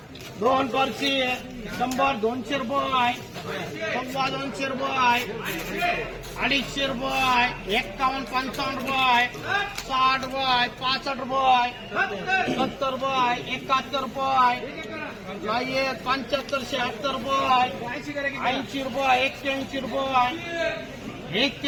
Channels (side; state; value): both; identical; correlation 1.00